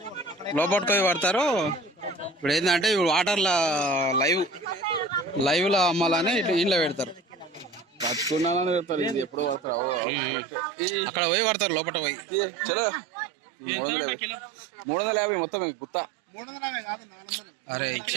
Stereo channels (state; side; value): drops out; left; at 10.0 s